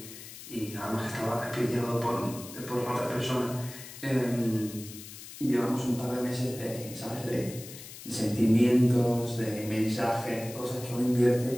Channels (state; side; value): noise; left; hiss, 14 dB below the sound